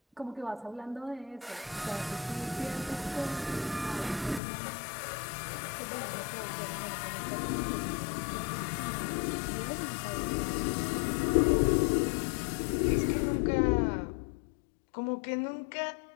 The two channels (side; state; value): right; drops out; at 4.4 s